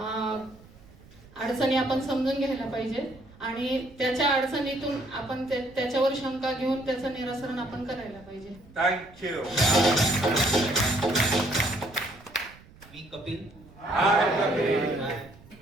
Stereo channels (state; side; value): noise; right; rumble, 24 dB below the sound